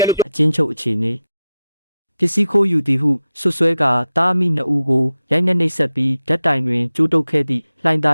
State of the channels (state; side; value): inverted; both; correlation -0.91